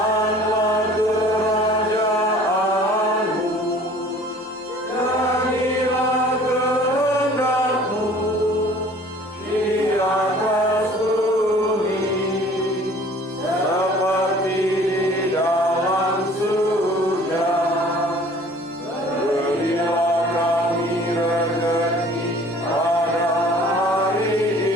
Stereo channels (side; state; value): both; normal; correlation 0.50